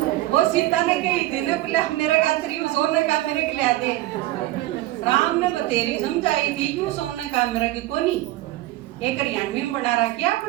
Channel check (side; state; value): left; quieter; 16.5 dB